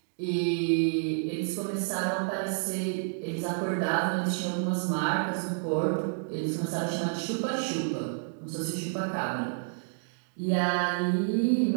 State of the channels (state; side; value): silent; left; digital silence